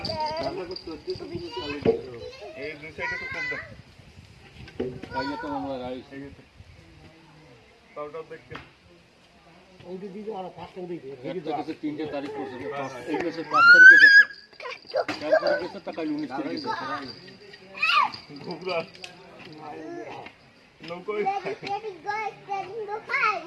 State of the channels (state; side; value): identical; both; correlation 1.00